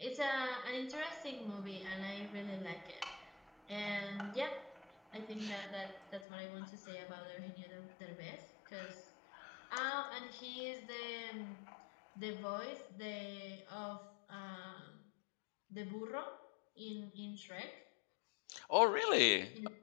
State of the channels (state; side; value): drops out; right; at 6.2 s